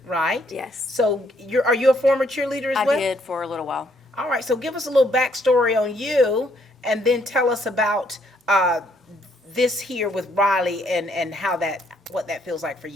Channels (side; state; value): both; normal; correlation 0.69